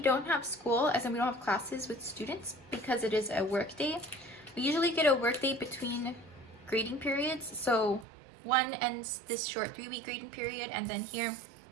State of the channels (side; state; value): left; drops out; at 8.1 s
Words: don't have school, as in we don't have classes with students because it is a work day. We usually get a work day between grading periods. So one ends this short 3-week grading period, and then here